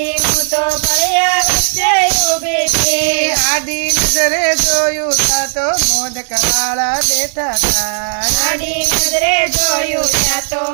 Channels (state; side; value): silent; left; digital silence